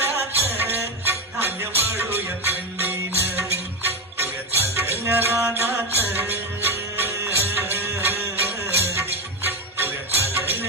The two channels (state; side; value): normal; both; correlation 0.13